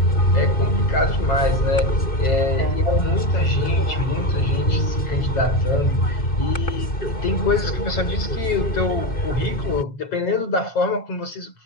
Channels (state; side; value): late; right; 2.6 ms